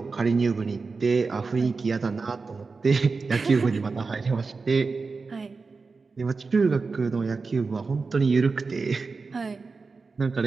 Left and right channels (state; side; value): quieter; left; 4.3 dB